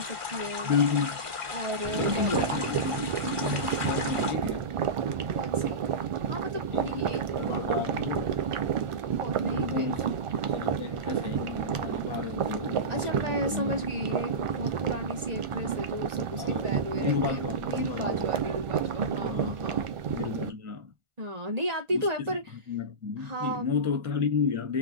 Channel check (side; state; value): left; late; 1.4 ms